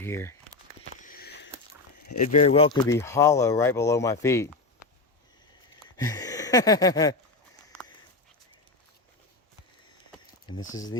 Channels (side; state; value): right; quieter; 3.4 dB